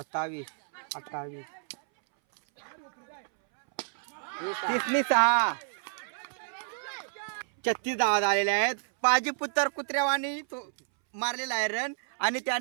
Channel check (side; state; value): left; silent; 58 dB below the other